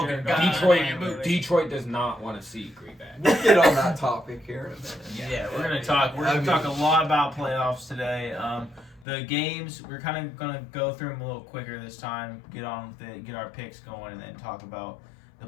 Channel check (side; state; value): right; drops out; at 9.1 s